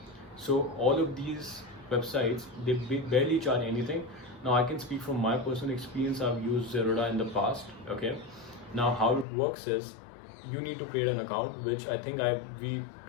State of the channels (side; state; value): right; drops out; at 9.2 s